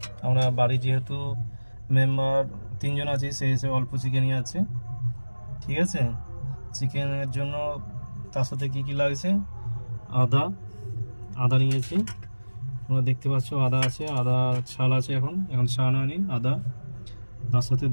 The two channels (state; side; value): inverted; both; correlation -1.00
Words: আমরা বাড়ি যেহেতু মেম্বার 3 জন আছি, সেই হিসেবে অল্প চিকেনই আছে, ঠিক আছে। চিকেনের জন্য তার সাথে কী কী লাগছে, আদা নিয়েছি, তোমরা দেখতে পাচ্ছ আদা আছে, আদা ছাল আছে, এখন ছাড়ানো হয়নি আদা। তার সাথে